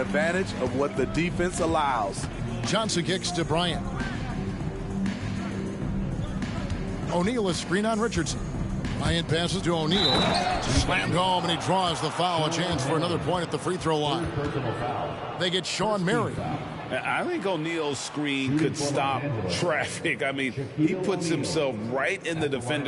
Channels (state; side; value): identical; both; correlation 1.00